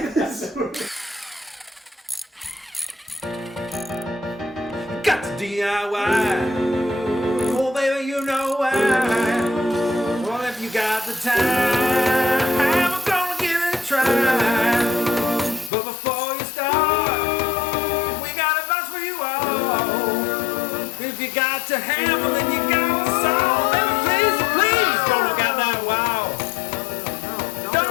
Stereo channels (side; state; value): right; drops out; at 15.7 s